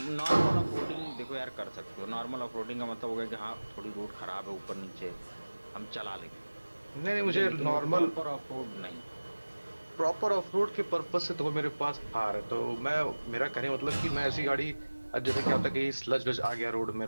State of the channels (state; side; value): inverted; both; correlation -1.00